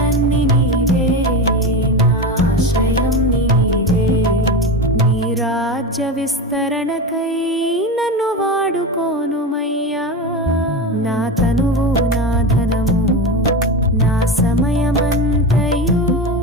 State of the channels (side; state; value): both; normal; correlation 0.22